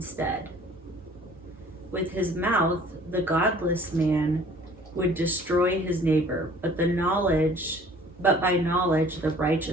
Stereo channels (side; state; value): both; normal; correlation 0.52